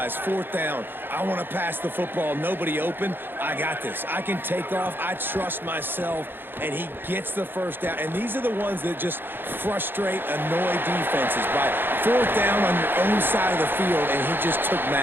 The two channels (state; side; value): late; left; 0.099 ms